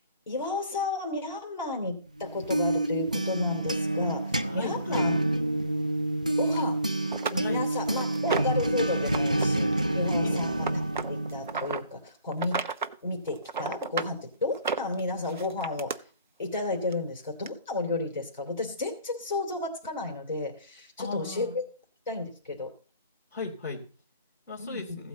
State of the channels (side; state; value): both; inverted; correlation -0.60